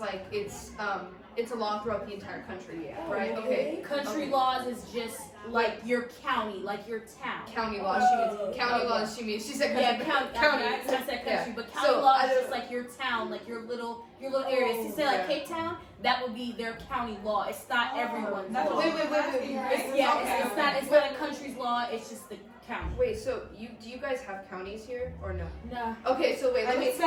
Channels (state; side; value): identical; both; correlation 1.00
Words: it's a law throughout the entire country, right? Okay. Country Okay. laws is just like your county, like your town. County laws. She means county laws. She said Yeah, country. county. I said country, Yeah. but county So, law I is don't- just like your town, like your little areas. To say like yeah. Cape Town, that would be their county law. It's not everyone's That's law. what Wait, I was wait, asking, wait. right? Yeah, Okay, it's okay. not. It's not a country's law. It's just the county. Wait, so do you guys have counties here or no? No. Okay, so wait, let me. It's